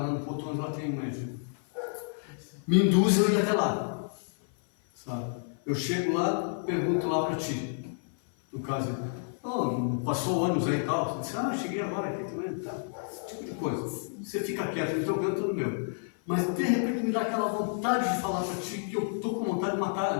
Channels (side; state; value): right; silent; 57 dB below the other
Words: no Potões, lá tem um médium. Me induz eu ir até lá, sabe? Eu chego lá, pergunto lá para ti, no caso, oh, passou ônibus aí e tal, você disse, cheguei agora aqui também, tá, esse tipo de coisa. Você fica quieto no teu canto, no meu. Mas de repente me dá aquela vontade de falar para ti que eu estou com vontade de